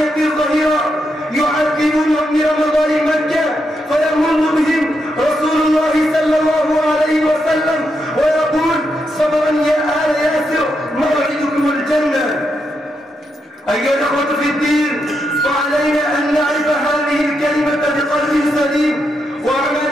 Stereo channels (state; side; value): normal; both; correlation 0.82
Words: الظهيرة يعذبونهم برمضان مكة، فيمر بهم رسول الله صلى الله عليه وسلم ويقول: صبرا يا آل ياسر موعدكم الجنة. أيها الأخوة في الدين، فعلينا أن نعرف هذه الكلمة بقلب سليم